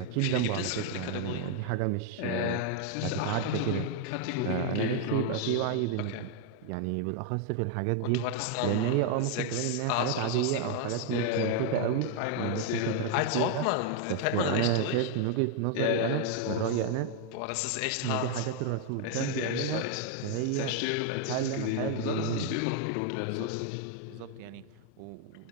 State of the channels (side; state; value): both; different; correlation 0.00